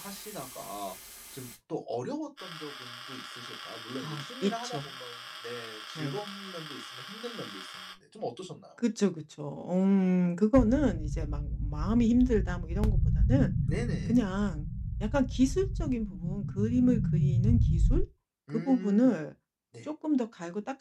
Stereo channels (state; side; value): identical; both; correlation 1.00